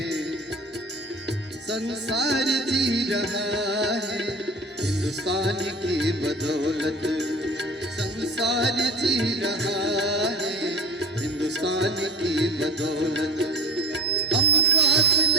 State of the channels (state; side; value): normal; both; correlation 0.34